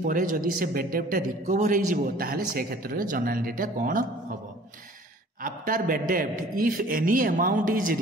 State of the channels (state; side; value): normal; both; correlation 0.50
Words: परे जदि से बैड डेब्ट रिकवर हो जिवो ताहले से क्षेत्र में जर्नल एंट्रीटा कौन हबो। आफ्टर बैड डेब्ट if any amount is